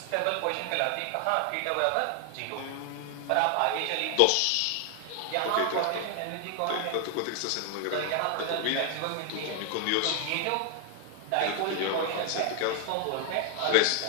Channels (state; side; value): different; both; correlation 0.00